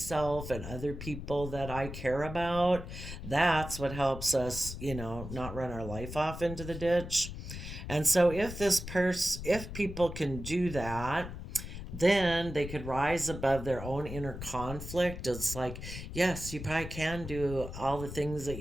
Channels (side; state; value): left; noise; rumble, 9 dB below the sound